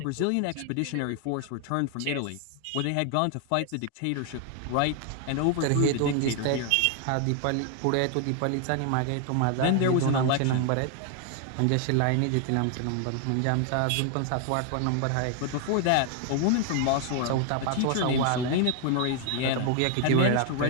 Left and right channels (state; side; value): different; both; correlation 0.00